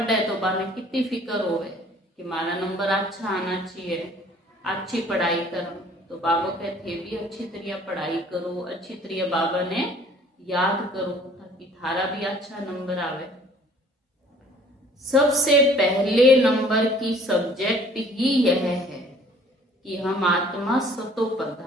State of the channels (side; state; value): both; normal; correlation 0.54